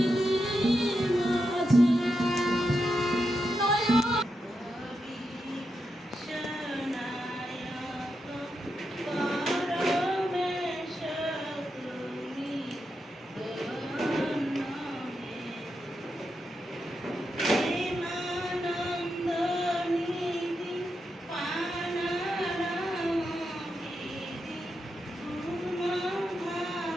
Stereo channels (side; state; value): both; normal; correlation 0.86